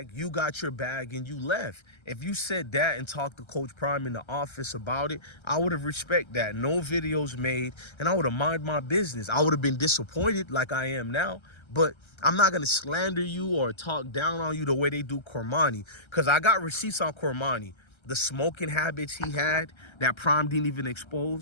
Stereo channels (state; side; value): late; right; 1.3 ms